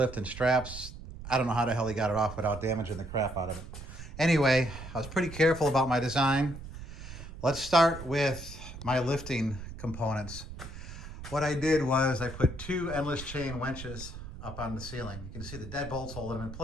and straps. I don't know how the hell he got it off without damaging the crap out of it. Anyway, I was pretty careful about my design. Let's start with my lifting components. What I did was I put two endless chain winches up on the ceiling. You can see the deadbolts holding them in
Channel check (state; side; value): noise; right; rumble, 12 dB below the sound